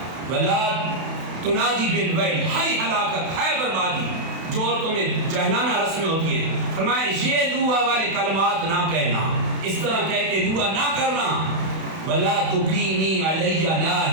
ولا تنادی بالویل، ہائے ہلاکت، ہائے بربادی، جو عورتوں میں جہلانہ رسمیں ہوتی ہیں، فرمایا یہ نوحہ والے کلمات نہ کہنا، اس طرح کہہ کے نوحہ نہ کرنا، ولا تقیمی علی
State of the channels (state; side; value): late; left; 31 ms